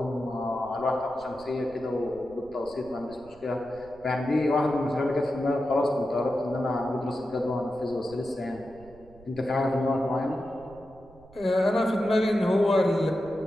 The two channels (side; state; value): right; noise; rumble, 23 dB below the sound